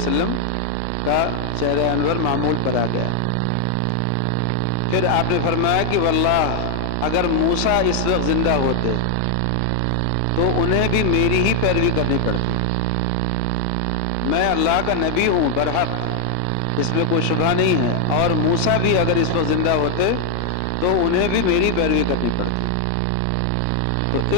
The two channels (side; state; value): both; different; correlation 0.00